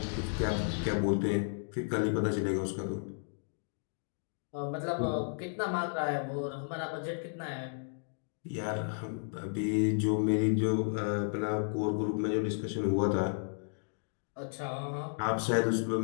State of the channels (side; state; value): right; silent; digital silence